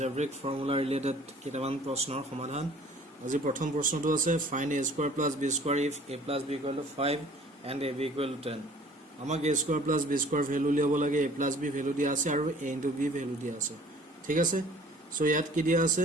ফৰ্মুলা ৰিলেটেড কেইটামান প্ৰশ্নৰ সমাধান। আজি প্ৰথম প্ৰশ্নটো আছে find a square plus b square if a plus b equal to 5 and ab equal to 10। আমাক a square plus b square value লিয়াব লাগে, a plus b ভ্যালু দিয়া আছে আৰু a into b ভ্যালু দিয়া আছে। ঠিক আছে, সো ইয়াত কি দিয়া আছে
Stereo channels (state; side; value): normal; both; correlation 0.52